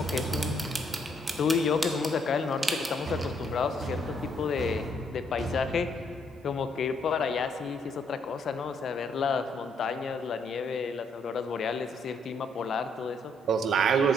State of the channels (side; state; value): both; normal; correlation 0.71